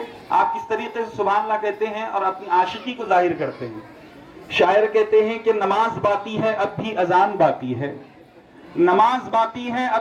آپ کس طریقے سے سبحان اللہ کہتے ہیں اور اپنی عاشقی کو ظاہر کرتے ہیں. شاعر کہتے ہیں کہ نماز باقی ہے اب بھی اذان باقی ہے, نماز باقی ہے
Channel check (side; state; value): both; identical; correlation 1.00